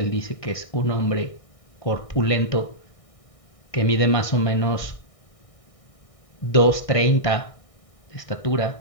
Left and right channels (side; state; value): right; late; 1.6 ms